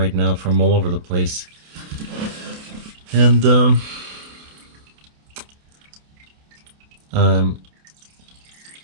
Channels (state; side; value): late; left; 28 ms